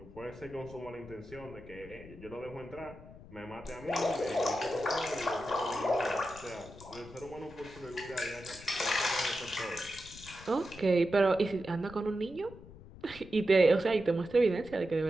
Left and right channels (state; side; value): noise; left; rumble, 18 dB below the sound